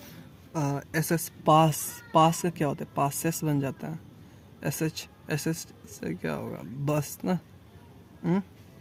एस एस पास, पास का क्या होता है? पासेस बन जाता है। एस एच, एस एच से क्या होगा? बस ना।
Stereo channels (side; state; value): both; identical; correlation 1.00